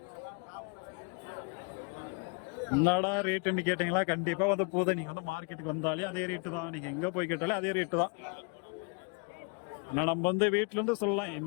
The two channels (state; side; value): quieter; right; 36.3 dB